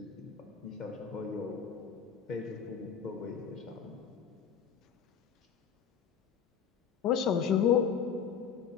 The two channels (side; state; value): right; quieter; 7.2 dB